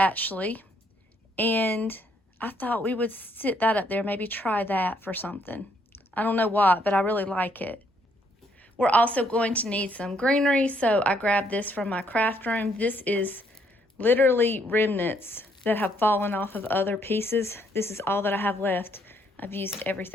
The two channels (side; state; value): both; normal; correlation 0.70